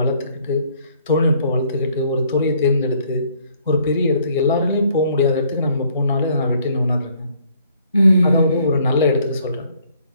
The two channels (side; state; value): both; inverted; correlation -0.64